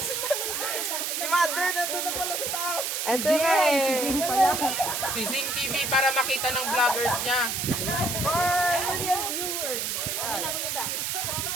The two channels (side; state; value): right; noise; hiss, 1 dB below the sound